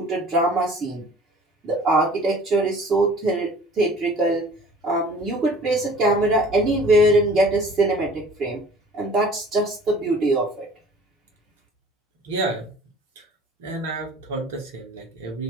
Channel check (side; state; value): both; normal; correlation 0.48